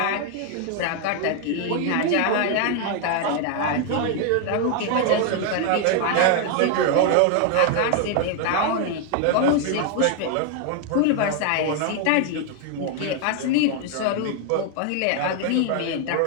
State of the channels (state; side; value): different; both; correlation 0.00